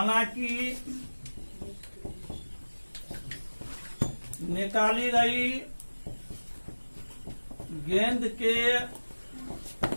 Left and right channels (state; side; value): inverted; both; correlation -1.00